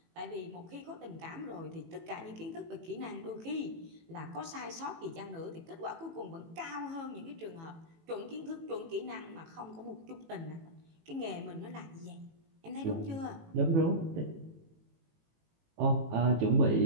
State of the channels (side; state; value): left; late; 18 ms